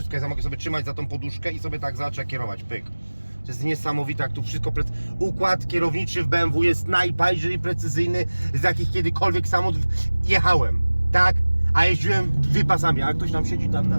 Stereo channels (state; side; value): inverted; both; correlation -1.00